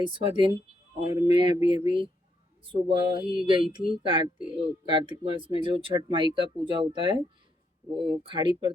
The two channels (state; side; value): normal; both; correlation 0.76